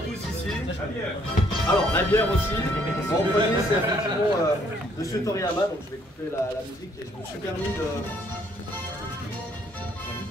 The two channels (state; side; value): normal; both; correlation 0.66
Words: tous ici. Alors, la bière aussi. En premier, c'est effectivement Monsieur Toriyama. Donc, je vais couper la musique et je me suis permis